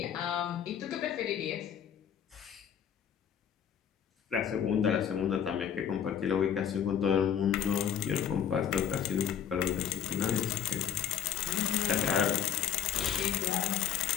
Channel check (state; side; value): quieter; right; 9.3 dB